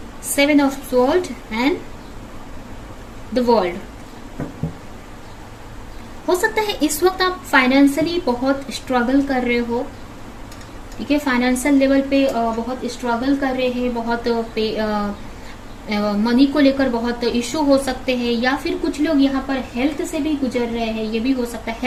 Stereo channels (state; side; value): identical; both; correlation 1.00